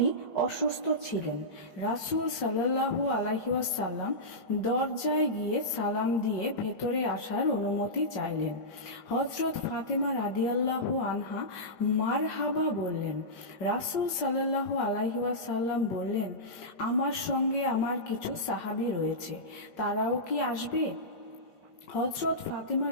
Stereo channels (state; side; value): late; right; 5.0 ms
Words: অসুস্থ ছিলেন। রাসূল সাল্লাল্লাহু আলাইহি ওয়াসাল্লাম দরজায় গিয়ে সালাম দিয়ে ভেতরে আসার অনুমতি চাইলেন। হযরত ফাতেমা রাদিয়াল্লাহু আনহা মারহাবা বললেন। রাসূল সাল্লাল্লাহু আলাইহি ওয়াসাল্লাম বললেন, আমার সঙ্গে আমার কিছু সাহাবী রয়েছে, তারাও কি আসবে? হযরত ফাতেমা